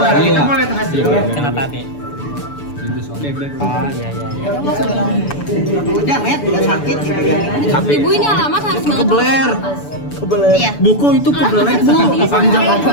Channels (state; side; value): late; right; 6.9 ms